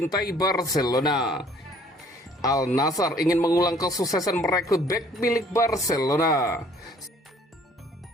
Barcelona. Al Nassr ingin mengulang kesuksesan merekrut bek milik Barcelona.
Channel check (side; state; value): both; normal; correlation 0.57